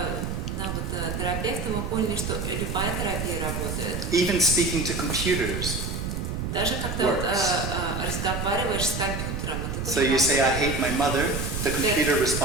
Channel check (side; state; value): right; noise; rumble, 3 dB below the sound